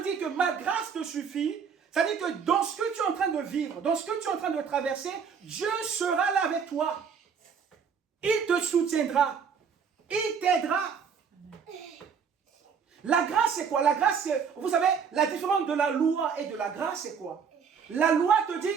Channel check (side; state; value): left; quieter; 6.5 dB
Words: dit que ma grâce te suffit, c'est-à-dire que dans ce que tu es en train de vivre, dans ce que tu es en train de traverser, Dieu sera là avec toi. Il te soutiendra. Il t'aidera. La grâce, c'est quoi? La grâce, c'est, vous savez, la différence de la loi et de la grâce, c'est quoi? La loi te